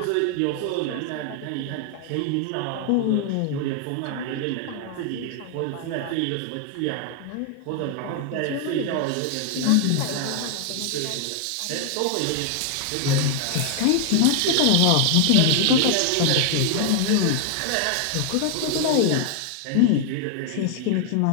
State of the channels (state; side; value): different; both; correlation 0.00